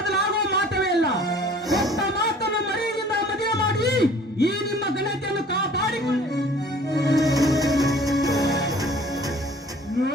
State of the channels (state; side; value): normal; both; correlation 0.50